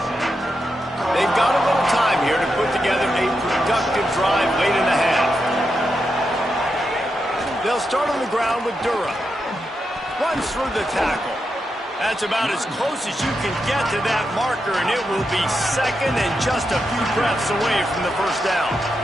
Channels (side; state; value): both; normal; correlation 0.86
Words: They've got a little time here to put together a productive drive late in the half. They'll start on the ground with Durham. Runs through the tackle. That's about as close as you can get to that marker, and it will be second and just a few breaths away from the first down.